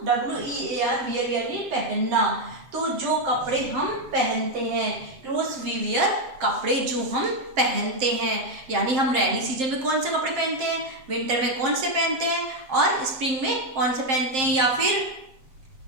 WEAR वियर यानी पहनना। तो जो कपड़े हम पहनते हैं, क्लोथ्स वी वियर कपड़े जो हम पहनते हैं, यानी हम रैनी सीजन में कौन से कपड़े पहनते हैं, विंटर में कौन से पहनते हैं और स्प्रिंग में कौन से पहनते हैं। या फिर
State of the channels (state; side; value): late; left; 7.6 ms